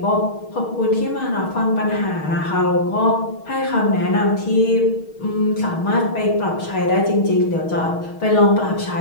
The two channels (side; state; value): right; late; 6.4 ms